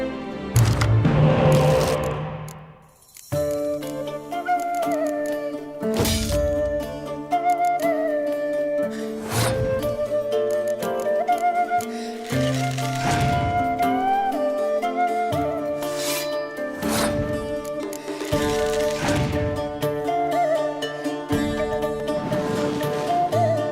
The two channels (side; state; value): both; identical; correlation 1.00